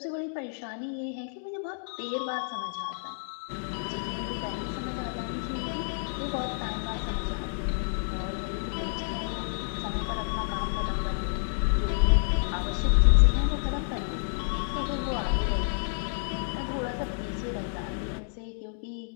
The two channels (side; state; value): right; silent; digital silence